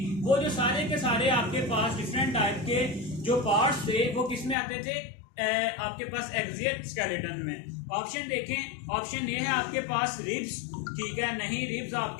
वो जो सारे के सारे आपके पास डिफरेंट टाइप के जो पार्ट्स थे वो किस में आते थे? आपके पास एक्सियल स्केलेटन में। ऑप्शन देखें, ऑप्शन ए है आपके पास रिब्स। ठीक है, नहीं, रिब्स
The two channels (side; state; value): right; drops out; at 4.5 s